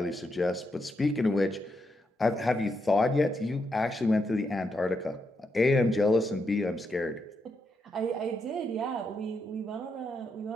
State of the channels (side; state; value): both; normal; correlation 0.82